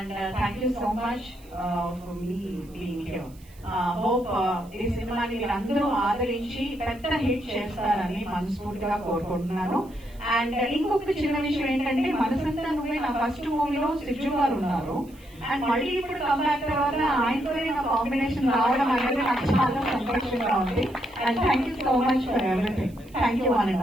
thank you so much for me being here. Hope ఈ సినిమాని మీరందరూ ఆదరించి పెద్ద హిట్ చేస్తారని మనస్ఫూర్తిగా కోరుకుంటున్నాను. అండ్ ఇంకొకటి చిన్న విషయం ఏంటంటే మనసంతా నువ్వే నా ఫస్ట్ మూవీలో సిజు గారు ఉన్నారు. అండ్ మళ్ళీ ఇప్పుడు కంబ్యాక్ తర్వాత ఆయనతోనే నా కాంబినేషన్ రావడం అనేది నాకు చాలా సంతోషంగా ఉంది. And thank you so much for everything. Thank you one and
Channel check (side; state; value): right; noise; hiss, 27 dB below the sound